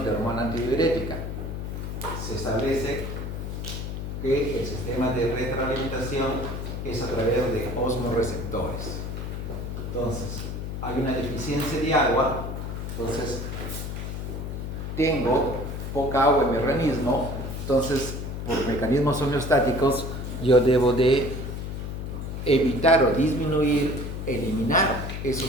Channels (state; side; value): noise; left; hum, 5 dB below the sound